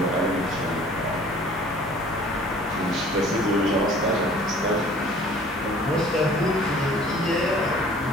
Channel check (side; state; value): both; normal; correlation 0.51